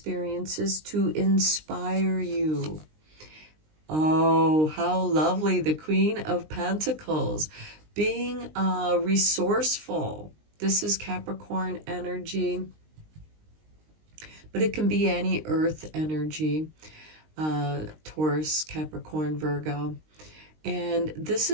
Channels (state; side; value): late; left; 19 ms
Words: to inspire you. Oh, how lovely. The Queen of Pentacles. Being resourceful. This is Capricorn energy, but it can be any earth energy. Taurus, Capricorn, Virgo. And this